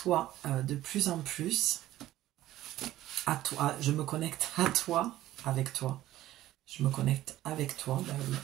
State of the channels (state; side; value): quieter; left; 14.5 dB